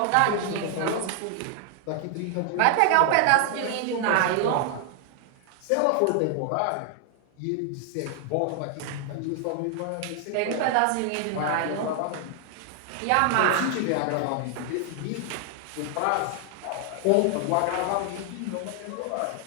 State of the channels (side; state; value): both; different; correlation 0.00